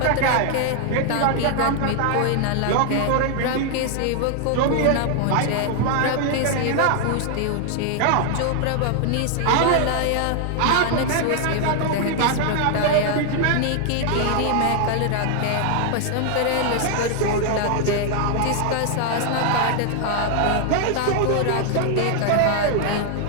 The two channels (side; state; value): both; different; correlation 0.00